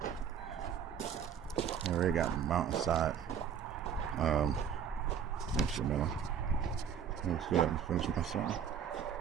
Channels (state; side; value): quieter; left; 7.8 dB